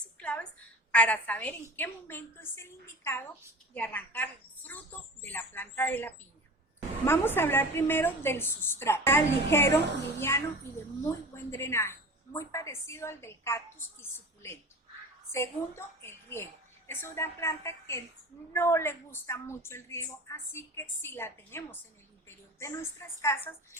y claves para saber en qué momento es el indicado de arrancar el fruto de la planta de la piña. Vamos a hablar primero del sustrato, ligero, liviano y de muy buen drenaje, muy parecido al del cactus y suculento. Segundo, el riego. Es una planta que no le gusta mucho el riego, así que si la tenemos en el interior de nuestras casas,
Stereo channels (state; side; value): normal; both; correlation 0.37